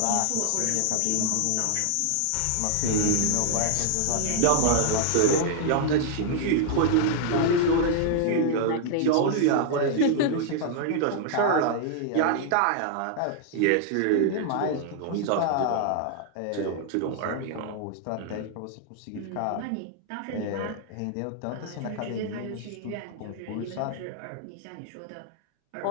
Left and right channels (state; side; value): different; both; correlation -0.01